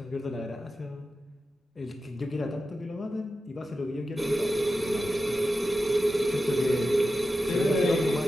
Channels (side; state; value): both; normal; correlation 0.91